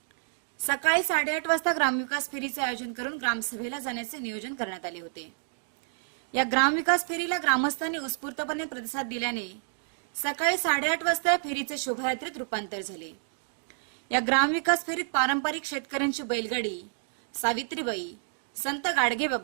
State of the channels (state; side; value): silent; left; digital silence